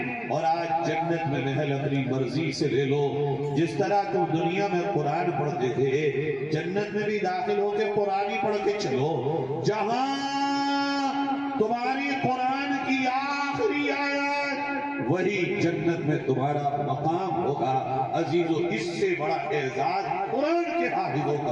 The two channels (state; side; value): identical; both; correlation 1.00